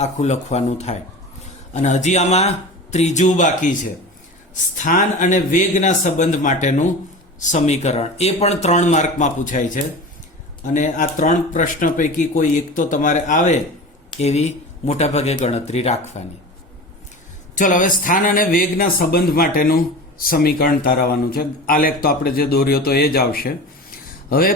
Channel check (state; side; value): normal; both; correlation 0.33